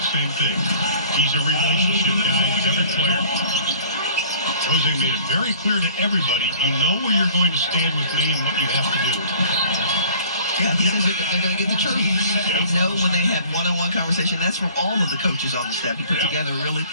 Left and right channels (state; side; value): inverted; both; correlation -0.49